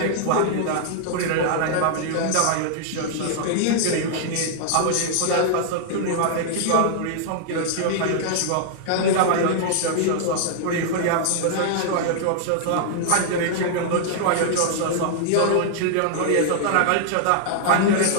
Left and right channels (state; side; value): different; both; correlation -0.01